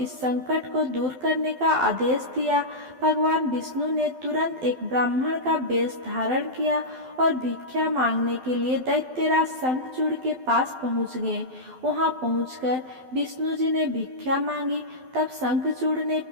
संकट को दूर करने का आदेश दिया। भगवान विष्णु ने तुरंत एक ब्राह्मण का वेश धारण किया और भिक्षा मांगने के लिए दैत्यराज शंखचूड़ के पास पहुंच गए। वहां पहुंचकर विष्णु जी ने भिक्षा मांगी। तब शंखचूड़ ने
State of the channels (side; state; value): left; late; 12 ms